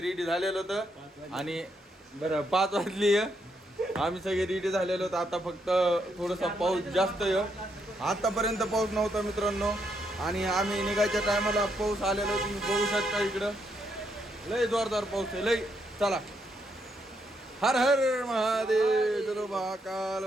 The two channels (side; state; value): both; normal; correlation 0.77